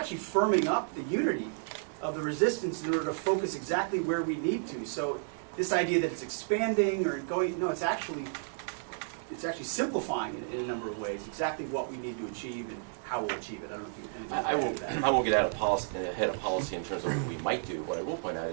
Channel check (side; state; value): left; silent; digital silence